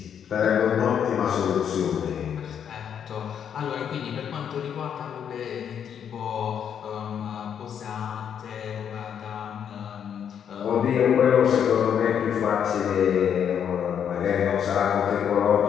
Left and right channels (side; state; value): right; quieter; 8.4 dB